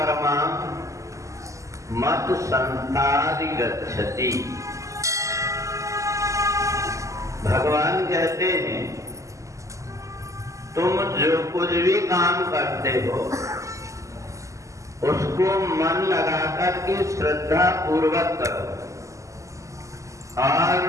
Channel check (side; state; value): left; late; 0.16 ms